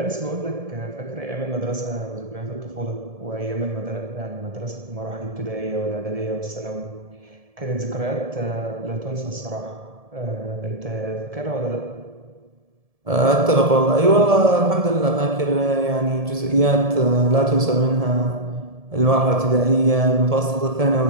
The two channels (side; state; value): left; late; 1.7 ms